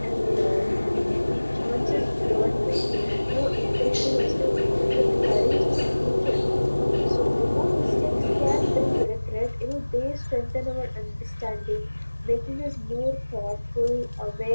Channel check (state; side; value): inverted; both; correlation -1.00